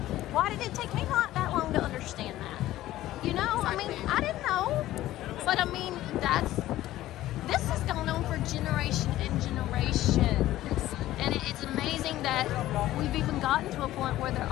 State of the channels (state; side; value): quieter; right; 14.9 dB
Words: why did it take me not that long to understand that? I mean, I didn't know. But I mean, this has gone on for generation and generation. And it's amazing that we've even gotten to a point where there